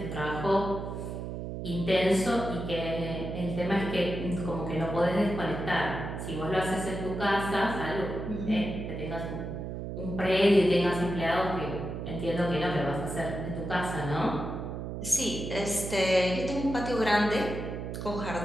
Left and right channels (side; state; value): right; noise; hum, 6 dB below the sound